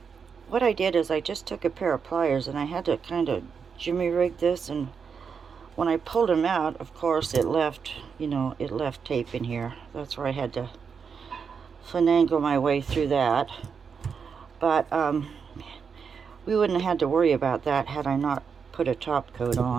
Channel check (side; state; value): left; quieter; 6.2 dB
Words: What I did is I just took a pair of pliers and I had to kind of jimmy rig this, and when I pulled them out, of course it left, you know, it left tape in here. That's where I had to finagle my way through that. But we wouldn't have had to worry about that had I not put a top coat